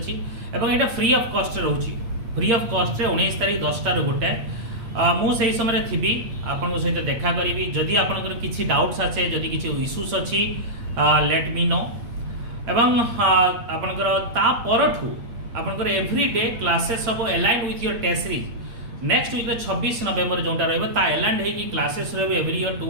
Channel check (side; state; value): left; late; 8.6 ms